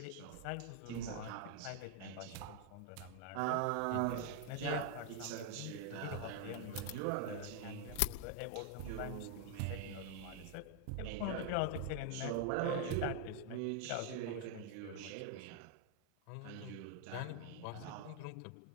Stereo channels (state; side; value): different; both; correlation 0.00